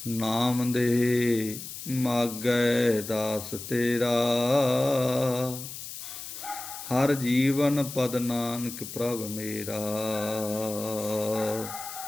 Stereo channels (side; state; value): left; noise; hiss, 10 dB below the sound